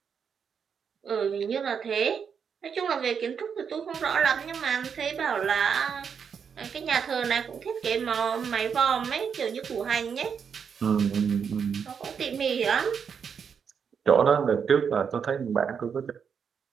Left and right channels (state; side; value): quieter; left; 6.8 dB